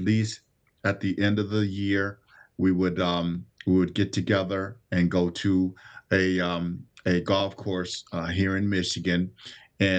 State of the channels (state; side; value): identical; both; correlation 1.00